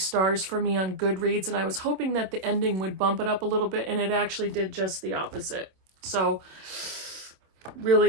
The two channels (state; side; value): late; left; 27 ms